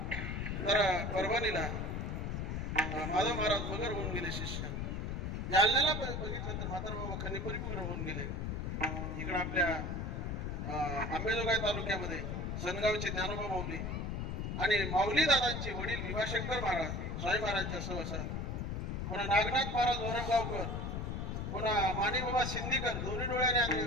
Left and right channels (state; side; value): noise; left; rumble, 2 dB below the sound